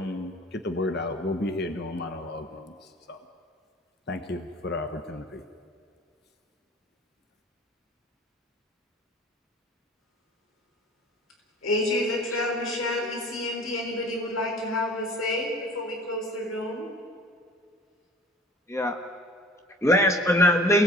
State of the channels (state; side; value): normal; both; correlation 0.45